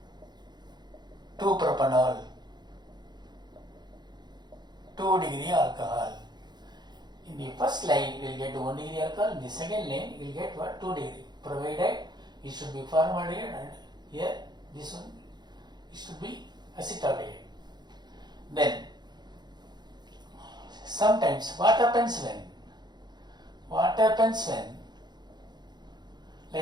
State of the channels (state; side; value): late; left; 0.21 ms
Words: 2-propanol, 2 degree alcohol. In the first line, you will get 1 degree alcohol. In the second line, you will get what? 2 degree. Provided it should be formaldehyde, and here this one it should be acetaldehyde. Then sometimes what happens when?